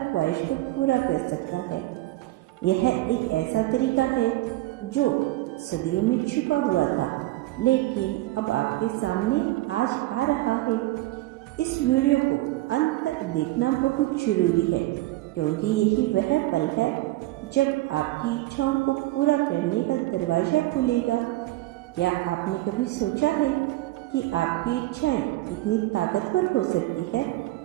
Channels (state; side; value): quieter; left; 17.8 dB